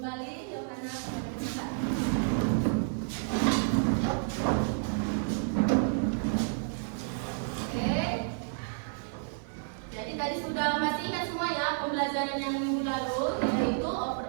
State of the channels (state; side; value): silent; left; 57 dB below the other